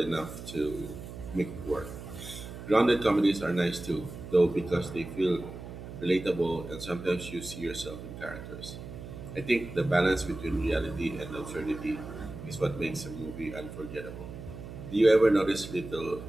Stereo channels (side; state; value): right; noise; hum, 11 dB below the sound